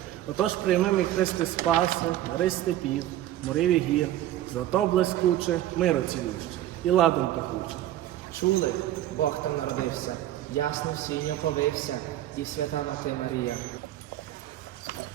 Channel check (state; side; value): quieter; left; 13.3 dB